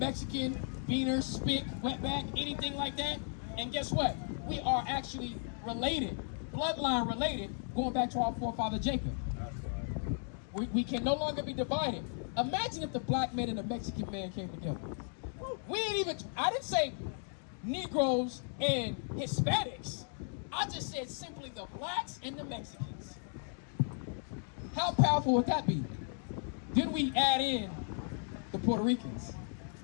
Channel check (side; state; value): right; silent; 54 dB below the other